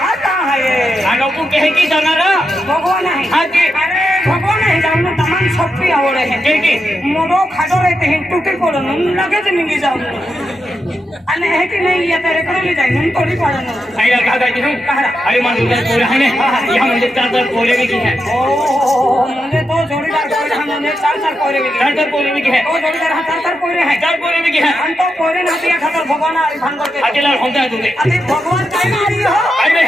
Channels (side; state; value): both; normal; correlation 0.86